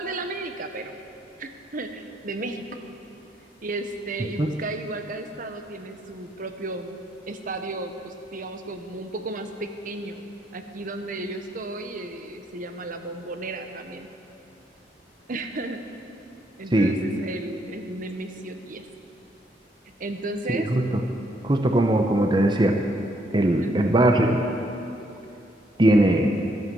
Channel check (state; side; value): normal; both; correlation 0.71